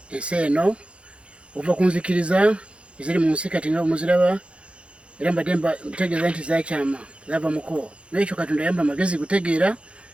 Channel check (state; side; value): late; left; 0.059 ms